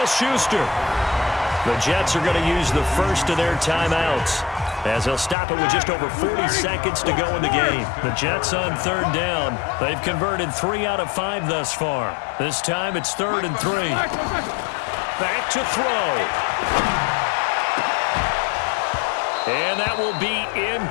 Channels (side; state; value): right; drops out; at 5.4 s